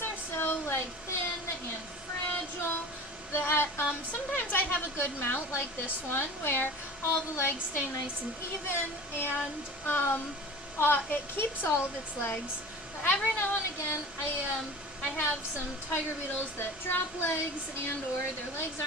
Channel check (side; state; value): both; normal; correlation 0.38